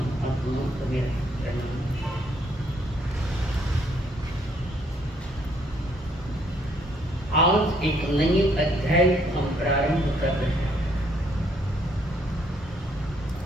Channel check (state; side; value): normal; both; correlation 0.68